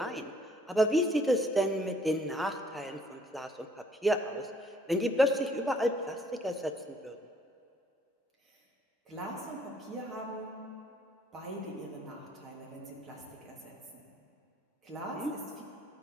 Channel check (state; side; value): normal; both; correlation 0.63